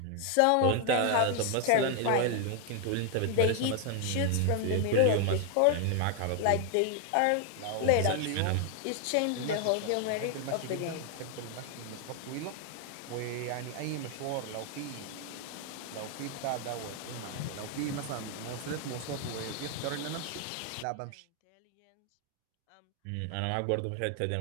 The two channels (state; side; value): different; both; correlation 0.01